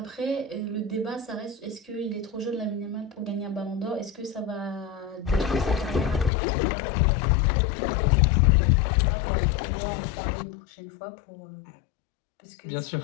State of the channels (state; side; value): drops out; right; at 6.3 s